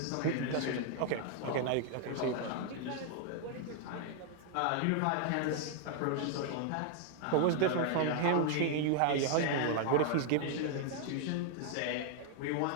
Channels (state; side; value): different; both; correlation 0.00